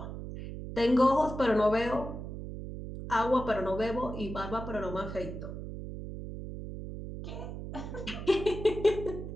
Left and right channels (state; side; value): noise; right; hum, 8 dB below the sound